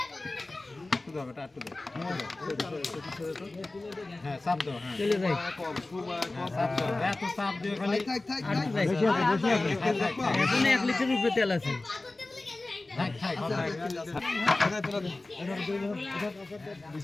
হ্যাঁ চাপ দাও হ্যাঁ চলে যাই চাপ দাও এত চাপ দিও খালি এখন 1 লিটার উপরে তেল আছে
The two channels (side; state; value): right; quieter; 3.0 dB